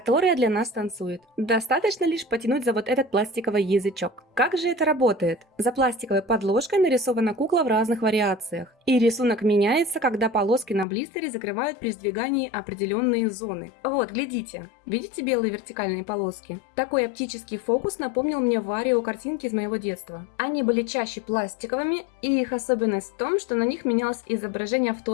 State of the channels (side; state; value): right; drops out; at 10.9 s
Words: для нас танцует. Достаточно лишь потянуть за вот этот пластиковый язычок. Как же это работает? За пластиковой подложкой нарисована кукла в разных вариациях. И рисунок меняется, когда полоски на блистере закрывают при сдвигании определенные зоны. Вот, глядите. Видите белые вертикальные полоски? Такой оптический фокус напомнил мне Варио картинки из моего детства. Они были чаще пластиковыми, и их особенность в том, что на них менялось изображение в